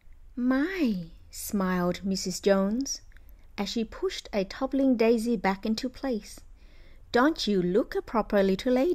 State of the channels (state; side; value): identical; both; correlation 1.00